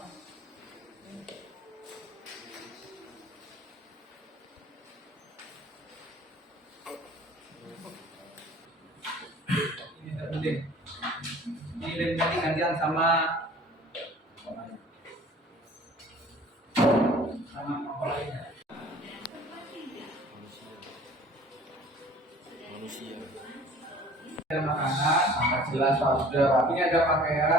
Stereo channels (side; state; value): both; normal; correlation 0.49